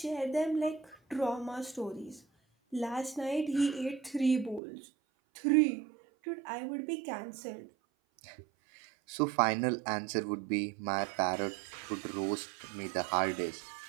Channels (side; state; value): left; drops out; at 4.6 s